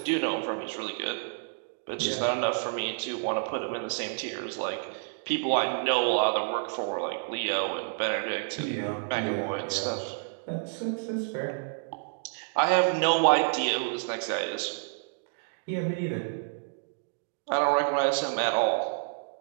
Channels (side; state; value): left; silent; digital silence